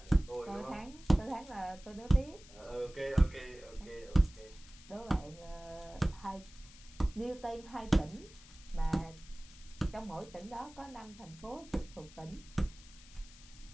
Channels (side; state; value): left; noise; hiss, 21 dB below the sound